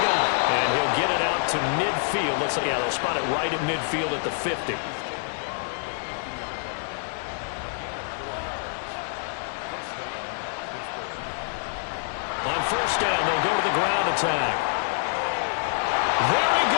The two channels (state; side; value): silent; right; digital silence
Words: And he'll get it out to midfield. Looks like, yeah, they'll spot it right at midfield at the 50. On 1st down, they'll go to the ground attack. There he